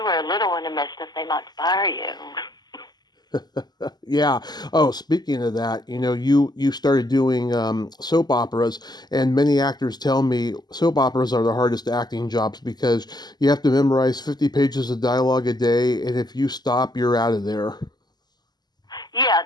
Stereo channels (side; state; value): right; late; 0.20 ms